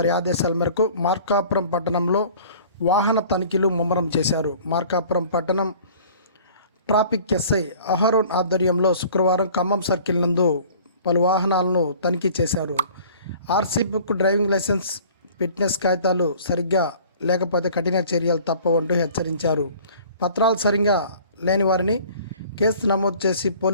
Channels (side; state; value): both; inverted; correlation -0.48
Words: ఆదేశాల మేరకు మార్కాపురం పట్టణంలో వాహన తనిఖీలు ముమ్మరం చేశారు. మార్కాపురం పట్టణం ట్రాఫిక్ ఎస్ఐ అహరోన్ ఆధ్వర్యంలో శుక్రవారం ఖమ్మం సర్కిల్ నందు పలు వాహనాలను తనిఖీ చేశారు. RC book, driving licence, fitness కాగితాలు సరిగ్గా లేకపోతే కఠిన చర్యలు తప్పవంటూ హెచ్చరించారు. పత్రాలు సరిగ్గా లేని వారిని కేసు నమోదు చేసి